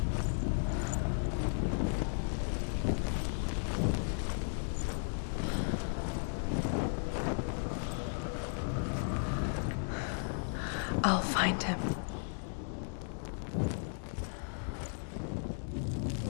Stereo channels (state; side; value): silent; right; digital silence